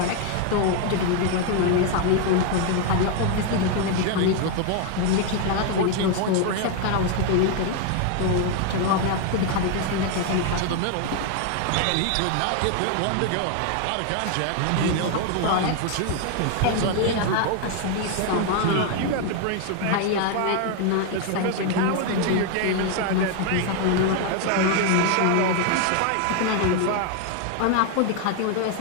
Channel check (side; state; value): both; different; correlation 0.00